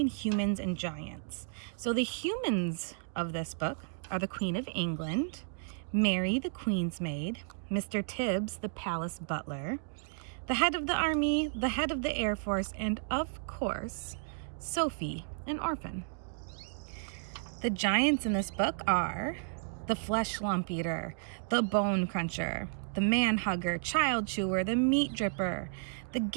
humans and giants. So the humans of this book are the Queen of England, Mary, the Queen's maid, Mr. Tibbs, the palace butler, the head of the army, the head of the Air Force, and of course, Sophie, an orphan. The giants in this book are the flesh lump eater, the bone cruncher, the man hugger, child chewer, the meat dripper, the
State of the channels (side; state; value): left; silent; digital silence